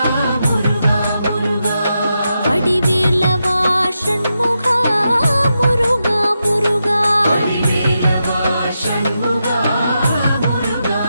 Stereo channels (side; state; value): both; inverted; correlation -0.87